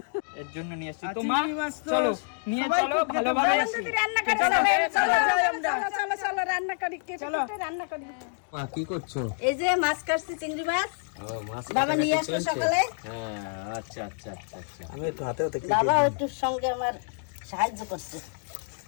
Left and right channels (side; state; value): right; silent; 60 dB below the other